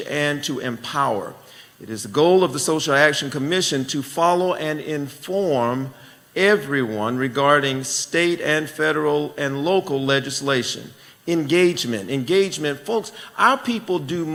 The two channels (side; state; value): both; identical; correlation 1.00